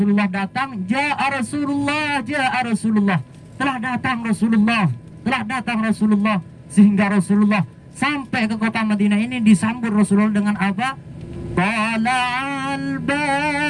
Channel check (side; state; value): both; identical; correlation 1.00